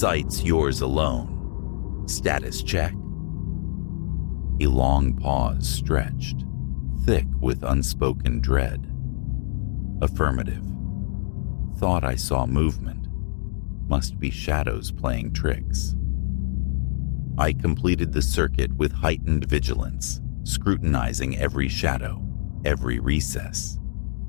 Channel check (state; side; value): silent; right; digital silence